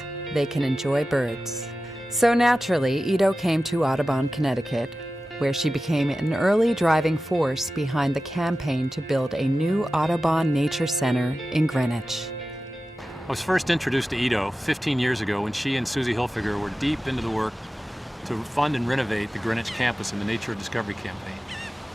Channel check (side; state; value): both; normal; correlation 0.94